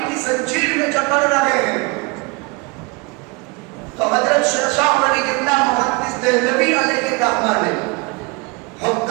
کی زنجیر میں جکڑ رہے ہیں۔ تو حضرت شاہ ولی اللہ محدث دہلوی علیہ الرحمہ نے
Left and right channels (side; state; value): left; quieter; 27.3 dB